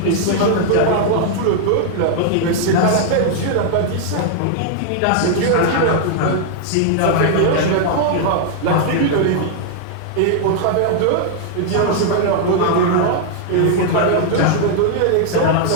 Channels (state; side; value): different; both; correlation -0.01